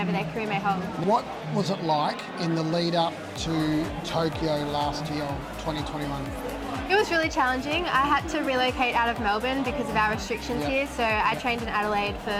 their career may hold. What was it like in the lead up to Tokyo last year, 2021? It was really challenging. I had to relocate out of Melbourne because of our restrictions here, so I trained in Adelaide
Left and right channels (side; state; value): both; identical; correlation 1.00